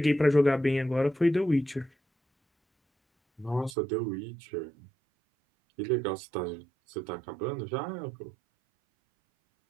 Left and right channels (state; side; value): drops out; left; at 3.8 s